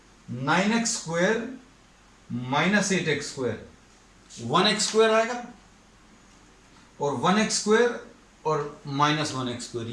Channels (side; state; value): both; identical; correlation 1.00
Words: 9x square minus 8x square 1x square आएगा, और 1x स्क्वायर और माइनस 1x स्क्वायर